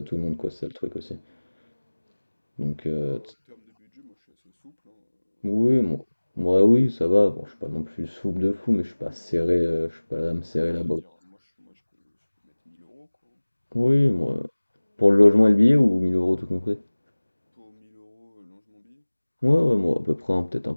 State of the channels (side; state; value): both; inverted; correlation -1.00